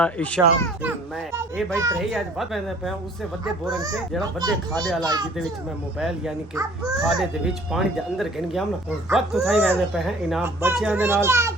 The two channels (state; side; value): normal; both; correlation 0.53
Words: ईशा ते मैं ये भाई तरही आज बात कहंदे पे उससे वड्डे बोरंग से जेड़ा वड्डे खादे वाला जिदे विच मैं मोबाइल यानी कि खादे दे विच पानी दे अंदर गिन गया ना और वक्त उठाई वहदे पे हैं इनाम बच्चियां दे नाल